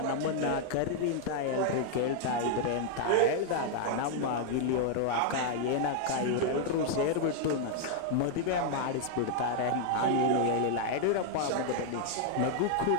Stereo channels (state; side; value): different; both; correlation 0.00